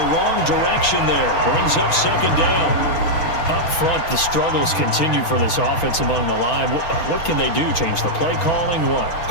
wrong direction there. Brings up 2nd down. Up front, the struggles continue for this offense among the line. What can they do? Change the play calling? What?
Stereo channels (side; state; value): right; late; 6.1 ms